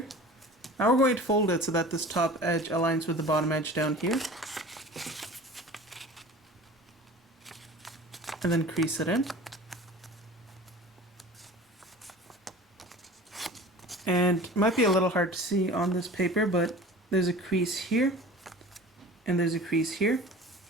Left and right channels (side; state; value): both; normal; correlation 0.40